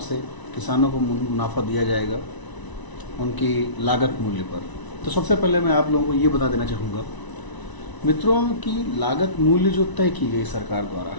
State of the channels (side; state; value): right; late; 1.0 ms